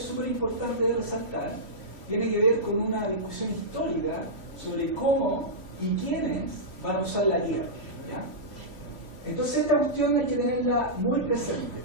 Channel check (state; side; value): late; right; 2.9 ms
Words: súper importante de resaltar, tiene que ver con una discusión histórica sobre cómo y quiénes van a usar la tierra, ¿ya? Entonces esta cuestión hay que tenerla muy presente,